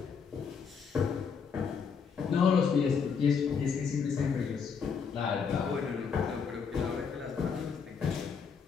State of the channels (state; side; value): quieter; right; 6.1 dB